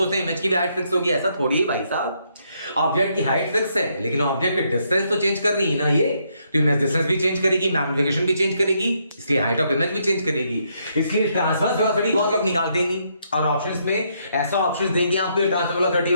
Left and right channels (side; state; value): both; inverted; correlation -0.75